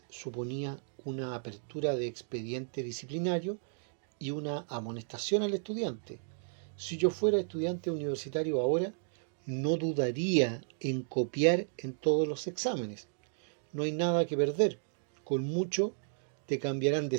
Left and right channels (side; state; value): left; silent; digital silence